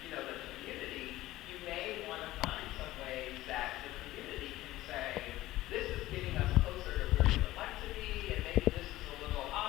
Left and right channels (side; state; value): right; quieter; 16.5 dB